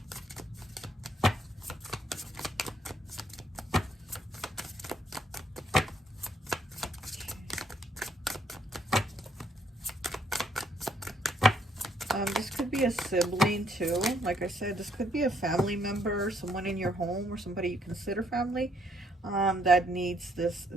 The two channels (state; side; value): normal; both; correlation 0.69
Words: This could be a sibling too. Like I said, this could be a family member, someone in your home, or somebody you consider family, that needs